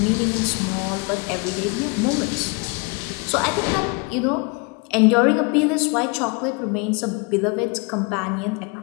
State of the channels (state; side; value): quieter; right; 30.2 dB